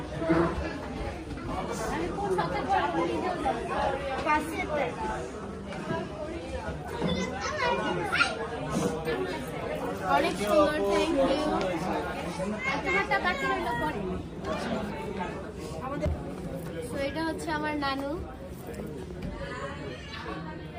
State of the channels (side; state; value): both; identical; correlation 1.00